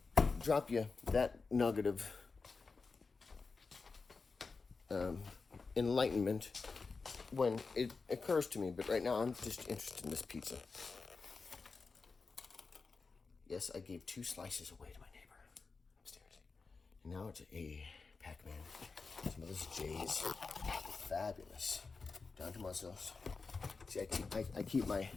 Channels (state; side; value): quieter; right; 4.4 dB